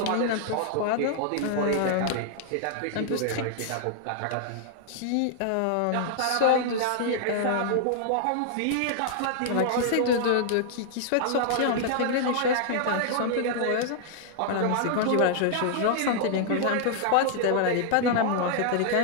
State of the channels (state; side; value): different; both; correlation -0.01